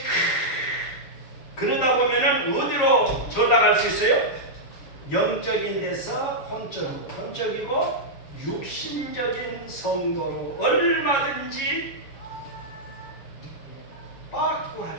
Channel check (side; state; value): right; late; 7.4 ms